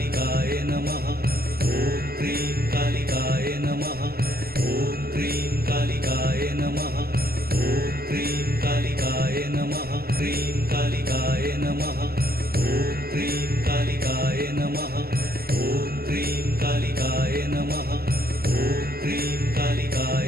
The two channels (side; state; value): left; late; 0.45 ms